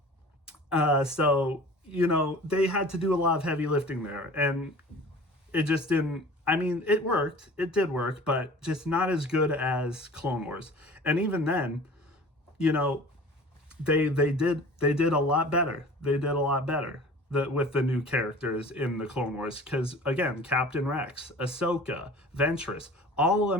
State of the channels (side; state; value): both; normal; correlation 0.43